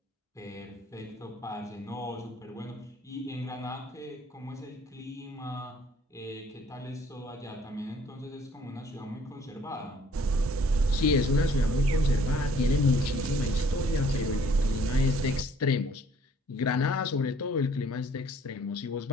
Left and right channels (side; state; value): both; normal; correlation 0.59